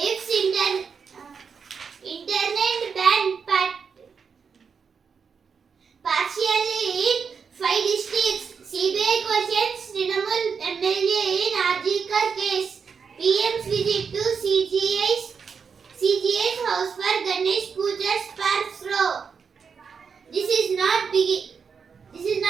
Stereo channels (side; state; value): left; quieter; 6.0 dB